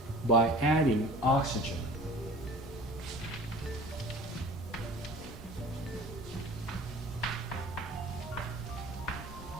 by adding oxygen.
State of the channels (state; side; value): normal; both; correlation 0.44